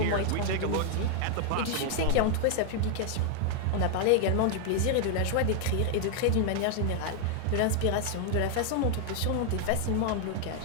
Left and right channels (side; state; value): both; different; correlation 0.00